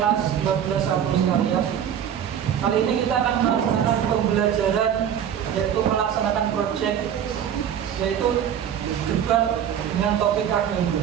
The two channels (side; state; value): left; quieter; 9.1 dB